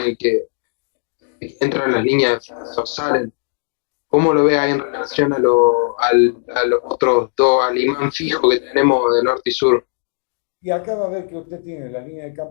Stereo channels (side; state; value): right; silent; digital silence